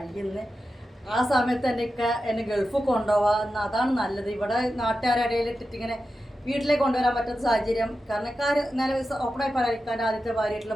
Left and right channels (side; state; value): both; normal; correlation 0.91